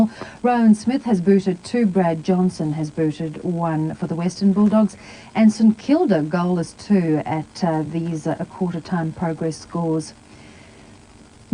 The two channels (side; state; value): both; identical; correlation 1.00